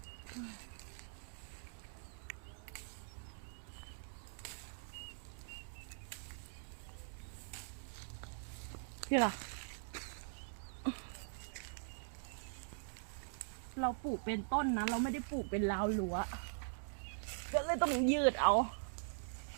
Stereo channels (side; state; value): left; silent; digital silence